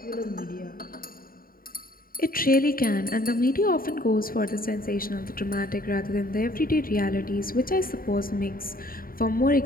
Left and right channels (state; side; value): late; right; 0.42 ms